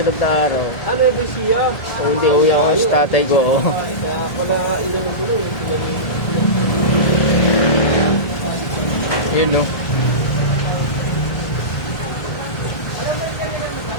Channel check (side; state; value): right; late; 1.3 ms